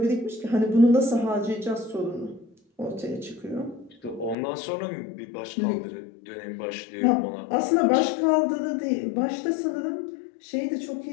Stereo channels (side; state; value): right; drops out; at 4.4 s